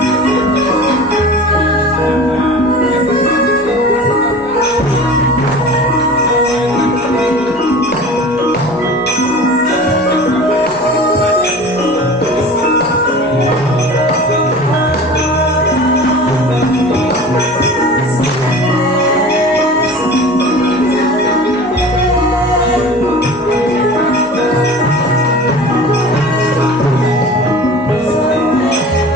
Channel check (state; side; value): normal; both; correlation 0.39